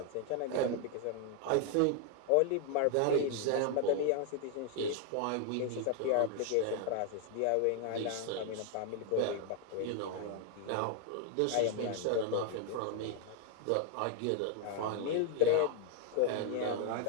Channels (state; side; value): different; both; correlation 0.00